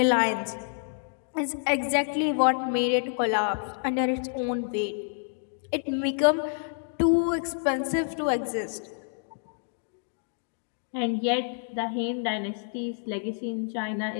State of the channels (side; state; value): right; silent; digital silence